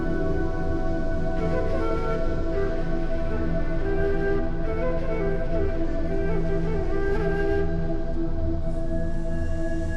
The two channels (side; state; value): both; identical; correlation 1.00